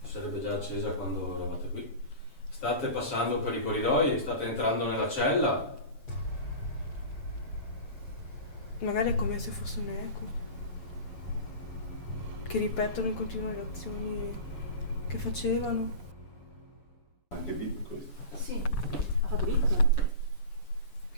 Sarebbe già accesa quando eravate qui. State passando per i corridoi, state entrando nella cella. Magari è come se fosse un eco. Che ripetono in continuo le azioni che facevano. Anche bip questo. Sì. Ha fatto bip?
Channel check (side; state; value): right; late; 7.0 ms